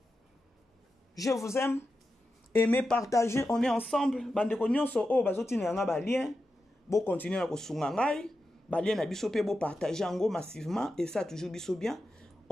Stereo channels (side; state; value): both; normal; correlation 0.90